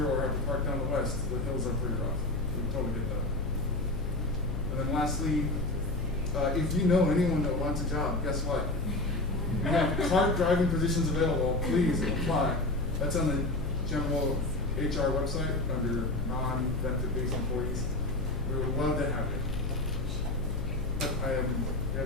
or have to park down the west, the hills are pretty rough. We totally get that. And then lastly, if you know anyone that wants a job, guess what? We have cart driving positions available. Please apply. That's on the general HR website under non-benefit-based employees. We would love to have you. But I am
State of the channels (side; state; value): left; noise; hum, 4 dB below the sound